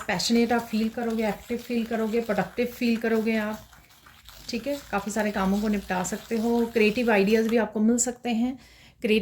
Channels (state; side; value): identical; both; correlation 1.00